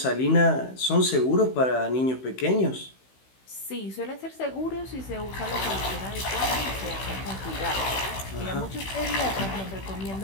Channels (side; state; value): right; late; 16 ms